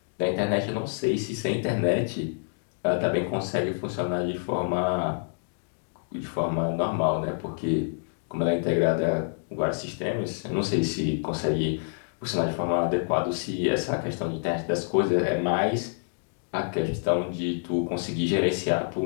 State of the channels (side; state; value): right; silent; digital silence